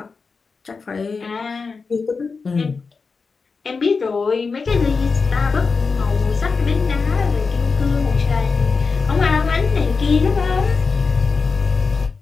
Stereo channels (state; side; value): quieter; right; 4.7 dB